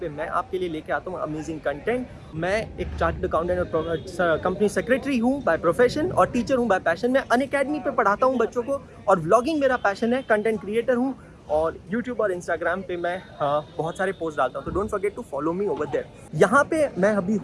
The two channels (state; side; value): identical; both; correlation 1.00